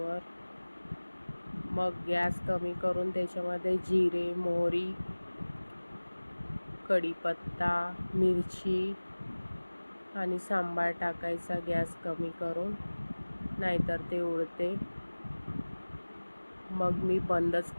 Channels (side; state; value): both; inverted; correlation -1.00